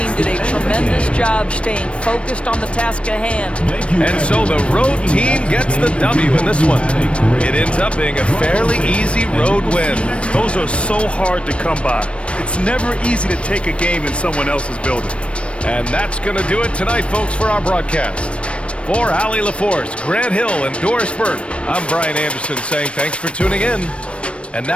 did a tremendous job staying focused on the task at hand. And so the road team gets the W in this one. It ends up being a fairly easy road win. Those are so hard to come by. It's never easy to take a game in someone else's building. And that's going to do it tonight, folks, for our broadcast. For Allie LaForce, Grant Hill, and Doris Burke, I'm Brian Anderson saying thanks for tuning in. And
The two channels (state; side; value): late; right; 0.060 ms